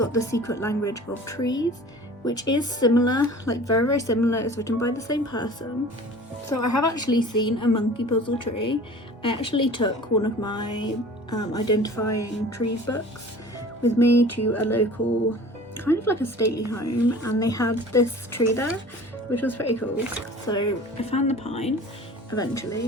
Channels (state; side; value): normal; both; correlation 0.43